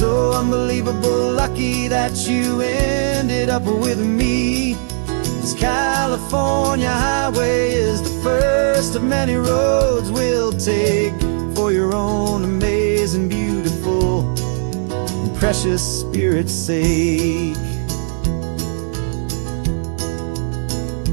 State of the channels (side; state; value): left; silent; digital silence